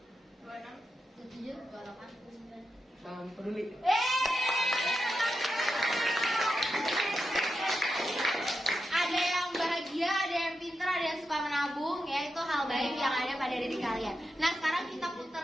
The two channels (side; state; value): both; normal; correlation 0.88